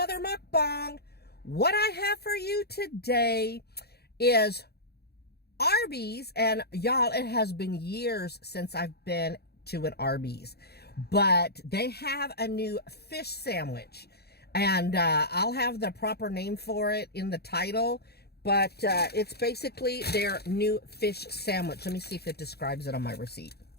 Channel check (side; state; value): right; late; 0.47 ms